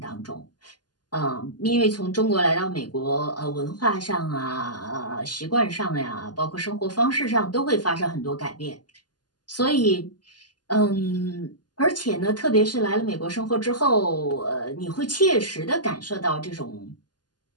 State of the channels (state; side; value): late; right; 0.70 ms